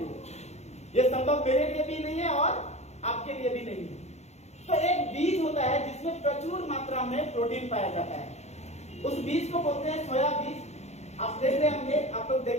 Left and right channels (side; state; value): right; late; 0.32 ms